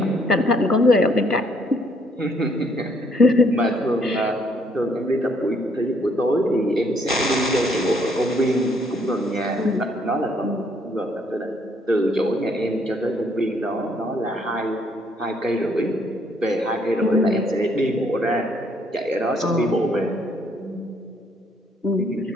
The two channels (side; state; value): both; normal; correlation 0.68